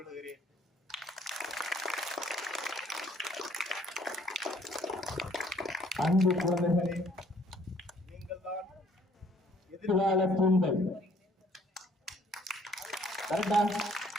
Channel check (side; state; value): both; normal; correlation 0.61